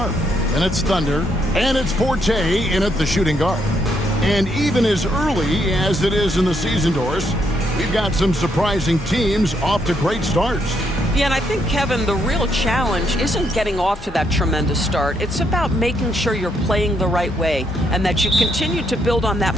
and it's Thunder, and it's Forte in at the shooting guard. And even as early as it is in the season, Doris, we've got some surprising teams off to great starts. Yeah, and I think, Kevin, the real challenge isn't getting off to that tremendous start. It's about making sure you're playing the right way and that you continue to build on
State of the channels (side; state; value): both; normal; correlation 0.75